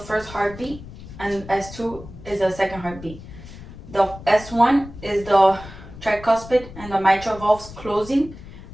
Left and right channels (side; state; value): left; noise; rumble, 15 dB below the sound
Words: heartbeat and S2 is the second heartbeat. The S1 is the tricuspid and the mitral valves closing,